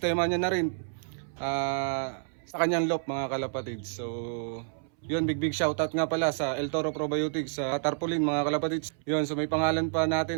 niya na rin sa kanyang lop mga kalapatids. So yun, big shoutout nga pala sa El Toro Probiotics sa Tarpaulin mga kalapatids. Yun, so may pangalan pa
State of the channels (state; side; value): silent; left; 58 dB below the other